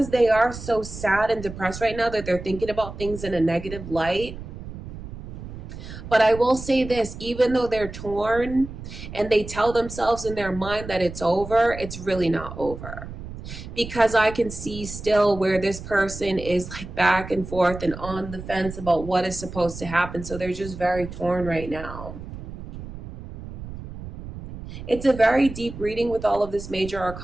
they are so sad and depressed right now that they're thinking about things in a negative light. But I will say this, even though they're torn and they tell themselves in their mind that it's over, it's really not over. Because I can see still where this person is like back and forth and on the fence about what is supposed to happen. So they're just very torn right now. It's a very deep reading with all of this major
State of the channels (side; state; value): right; noise; rumble, 11 dB below the sound